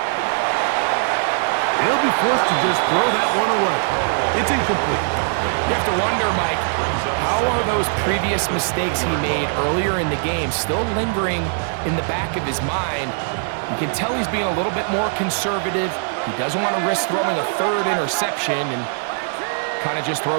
He'll be forced to just throw that one away. It's incomplete. You have to wonder, Mike, how are those previous mistakes he made earlier in the game still lingering in the back of his mind? You can tell he's being a little bit more conservative. He doesn't want to risk throwing a third interception and kind of just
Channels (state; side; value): silent; left; 65 dB below the other